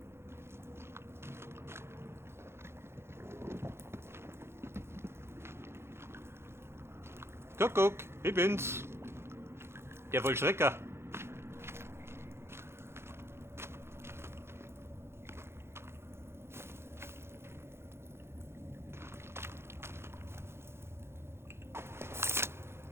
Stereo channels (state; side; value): late; left; 0.12 ms